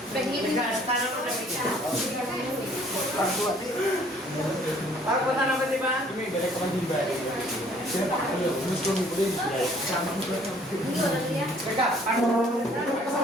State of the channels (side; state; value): both; normal; correlation 0.58